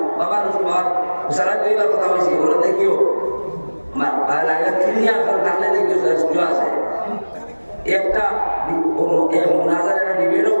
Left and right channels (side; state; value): both; inverted; correlation -1.00